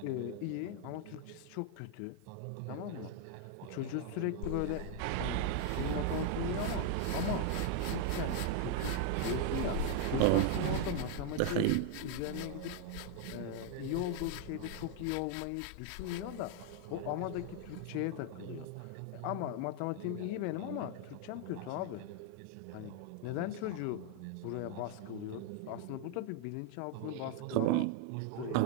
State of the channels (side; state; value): both; different; correlation 0.01